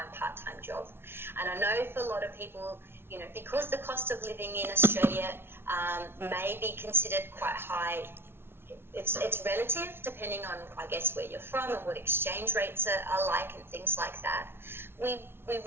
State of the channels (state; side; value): late; left; 0.11 ms